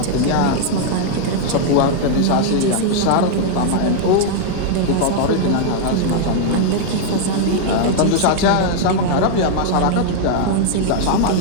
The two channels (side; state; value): both; different; correlation -0.01